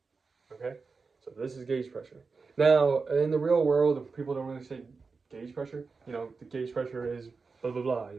okay? So this is gauge pressure. Now, in the real world, people don't really say gauge pressure. The gauge pressure is blah, blah, blah.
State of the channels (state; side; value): quieter; left; 4.5 dB